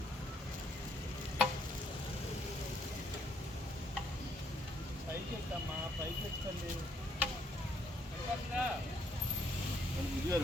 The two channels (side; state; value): both; normal; correlation 0.71